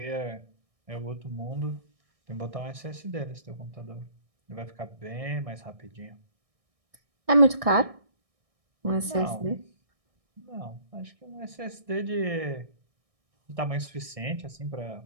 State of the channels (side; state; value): left; late; 1.6 ms